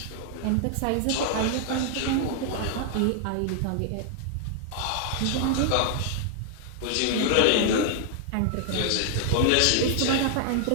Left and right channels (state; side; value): different; both; correlation 0.00